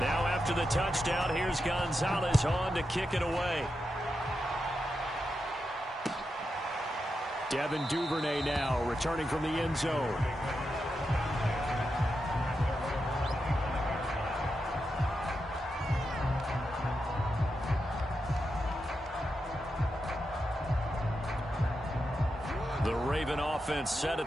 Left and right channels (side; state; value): both; normal; correlation 0.87